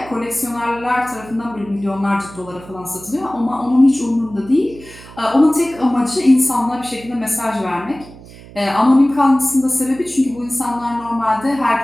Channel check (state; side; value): noise; right; hum, 19 dB below the sound